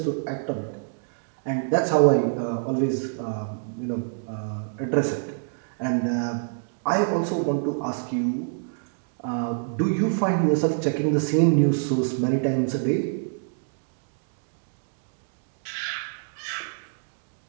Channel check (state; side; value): silent; left; digital silence